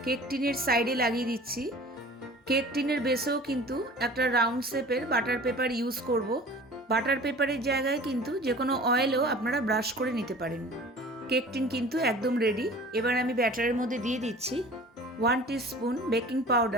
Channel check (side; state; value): both; normal; correlation 0.44